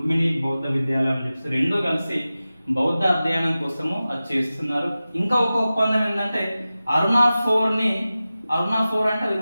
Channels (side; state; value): both; inverted; correlation -0.95